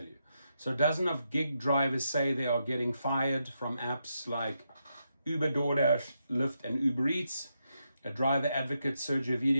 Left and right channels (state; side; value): inverted; both; correlation -0.83